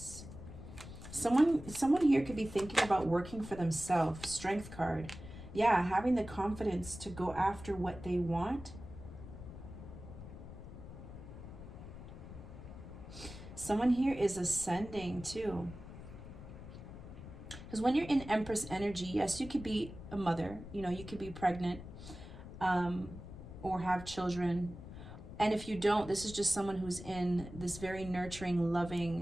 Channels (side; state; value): left; noise; rumble, 13 dB below the sound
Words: Someone here could be thinking about working for themselves. Strength card. Yeah, having the confidence to go after what they want. Someone here is ascending too. Because when you're in Empress energy, yes, you could be a mother. You know, you could be pregnant or have children. And if you don't, this is just someone who's in this very nurturing,